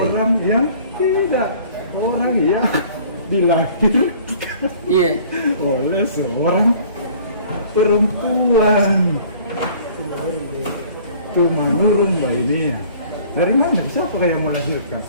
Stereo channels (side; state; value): both; inverted; correlation -0.52